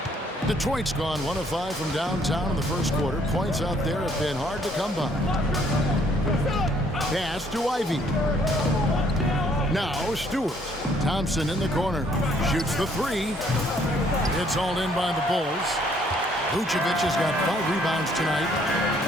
Detroit's gone 1 of 5 from downtown in the first quarter. Points out there have been hard to come by. Pass to Ivy. Now Stewart. Thompson in the corner. Shoots the 3. It's all in by the Bulls. Vucevic has got 5 rebounds tonight.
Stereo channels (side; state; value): both; normal; correlation 0.64